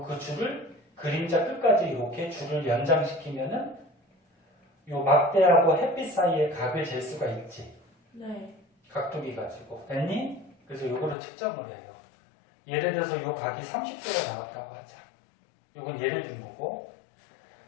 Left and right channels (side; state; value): right; drops out; at 11.2 s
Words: 그 줄을 그림자 끝까지 이렇게 줄을 연장시키면은 요 막대하고 햇빛 사이의 각을 잴 수가 있지. 네. 각도기 가지고. 됐니? 그래서 요거를 측정을 해요. 예를 들어서 요 각이 30도가 나왔다고 하자. 요건 예를 든 거고.